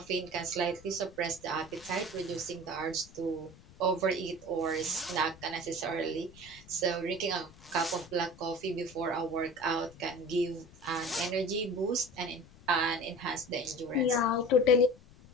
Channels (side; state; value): left; noise; rumble, 22 dB below the sound